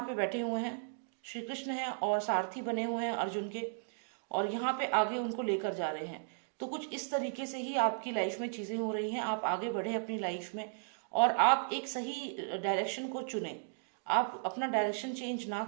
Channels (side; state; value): left; silent; digital silence